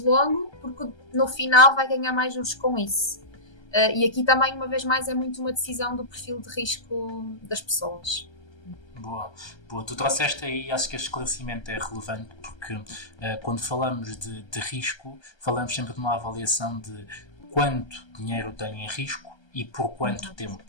porque no final vai ganhar mais juros com isso. E aqui também, uma vez mais, é muito uma decisão do perfil de risco das pessoas. Boa. Tu trouxeste aí, acho que este esclarecimento é relevante, porque quando falamos de risco, falamos sempre de uma avaliação de quanto dinheiro tem em risco e por quanto tempo.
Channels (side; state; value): right; late; 1.3 ms